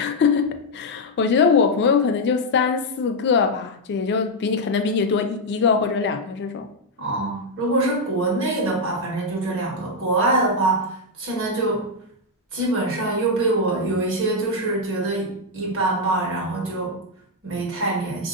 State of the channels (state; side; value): normal; both; correlation 0.00